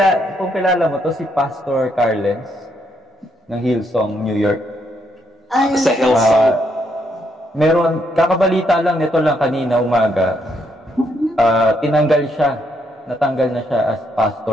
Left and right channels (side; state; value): both; normal; correlation 0.75